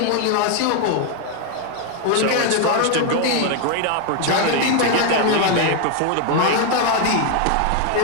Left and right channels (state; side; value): different; both; correlation 0.01